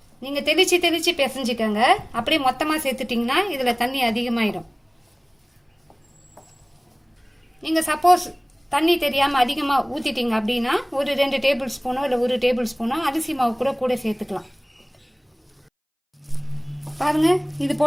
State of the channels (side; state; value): both; identical; correlation 1.00